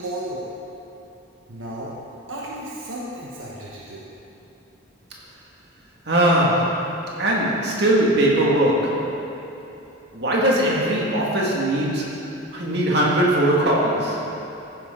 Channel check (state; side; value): normal; both; correlation 0.27